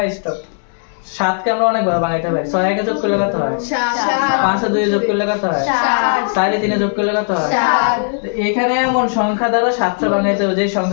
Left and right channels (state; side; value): silent; right; digital silence